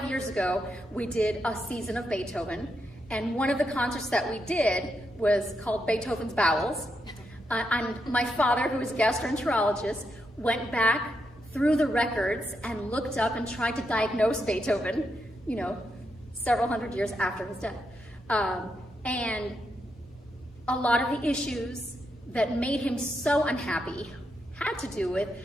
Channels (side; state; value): both; normal; correlation 0.83